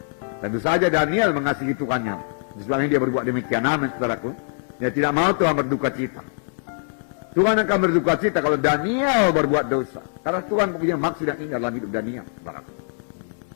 Tentu saja Daniel mengasihi Tuhannya. Sebabnya dia berbuat demikian. Amin, saudaraku. Dia tidak mau Tuhan berduka cita. Tuhan akan berduka cita kalau Daniel berbuat dosa. Karena Tuhan punya maksud yang indah dalam hidup Daniel, saudaraku.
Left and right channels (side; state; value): right; silent; digital silence